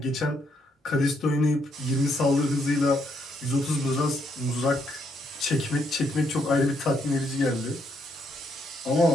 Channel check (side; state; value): both; normal; correlation 0.74